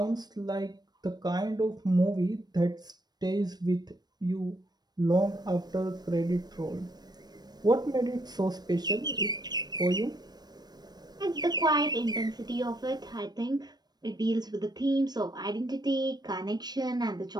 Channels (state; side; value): late; left; 0.19 ms